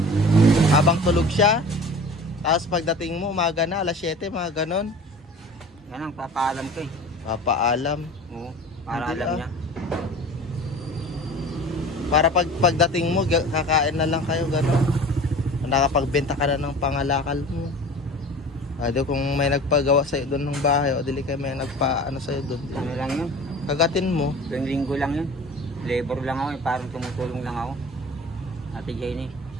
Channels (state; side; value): normal; both; correlation 0.40